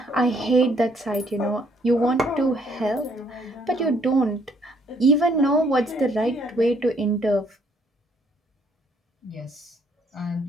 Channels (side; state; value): both; normal; correlation 0.67